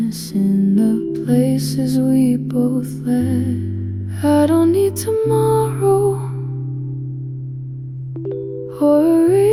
in the places we both led. I don't need tomorrow or a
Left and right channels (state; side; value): noise; left; rumble, 28 dB below the sound